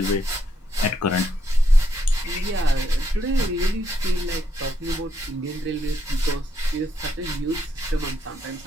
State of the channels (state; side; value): normal; both; correlation 0.77